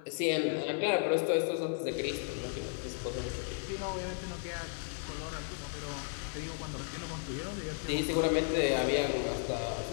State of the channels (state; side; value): silent; right; 55 dB below the other